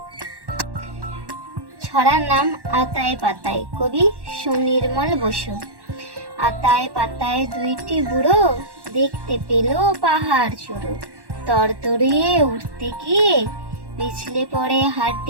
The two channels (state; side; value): late; left; 1.1 ms